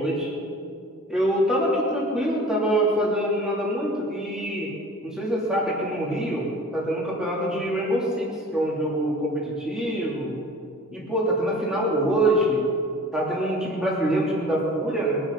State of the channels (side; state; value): both; normal; correlation 0.44